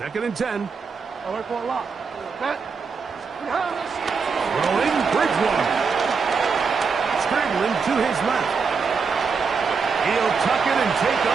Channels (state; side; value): quieter; left; 5.4 dB